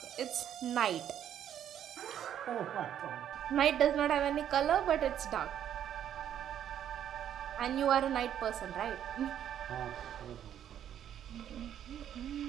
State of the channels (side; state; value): left; quieter; 10.1 dB